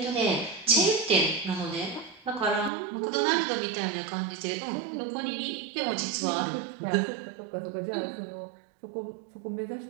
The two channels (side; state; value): left; drops out; at 2.7 s